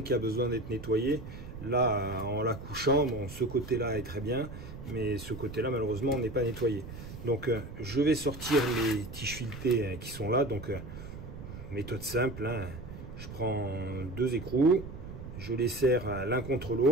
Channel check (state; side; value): noise; right; rumble, 11 dB below the sound